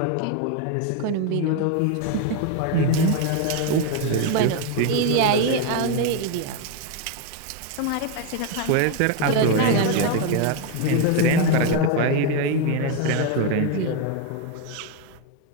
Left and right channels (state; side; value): different; both; correlation 0.02